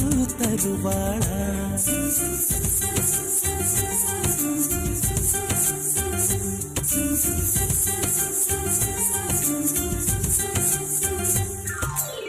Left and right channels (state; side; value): identical; both; correlation 1.00